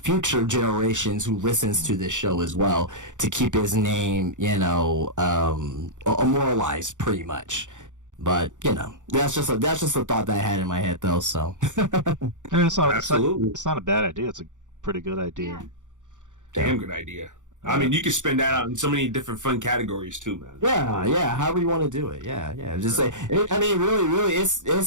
generations who listens to this show as well, to keep his name immortalized pretty much. But that's just a thought that I had in my head, though. So it's not a bad idea. It's a pretty good idea. Yeah. Damn good idea. I mean, you can spend that out in so many different fun categories too, man. Yeah. However you want to do it. Yeah. Just like, I mean, really,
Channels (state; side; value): late; left; 0.86 ms